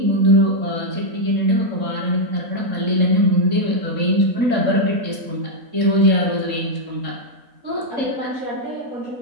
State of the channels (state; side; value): late; left; 3.7 ms